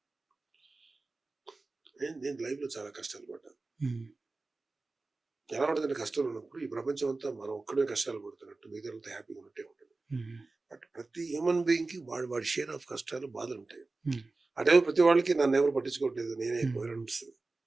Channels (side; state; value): left; quieter; 3.5 dB